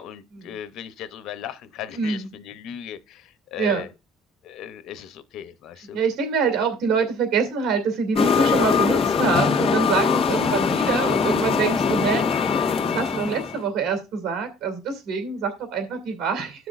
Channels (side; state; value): both; normal; correlation 0.50